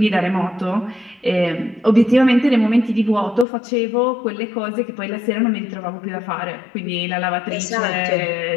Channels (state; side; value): drops out; right; at 3.5 s